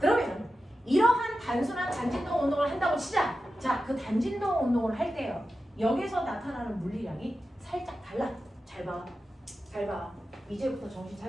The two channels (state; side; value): normal; both; correlation 0.92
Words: 이러한 단순한 단진동 운동을 한다고 치자. 자, 그 단진동 운동을 할 때요. 여기서 나타나는 물리량이 살짝 달라. 잘 봐. 잘 봐. 이제부터 정신